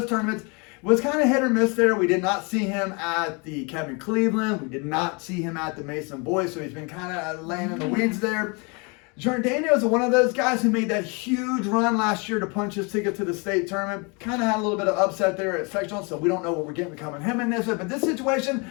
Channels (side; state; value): right; quieter; 31.3 dB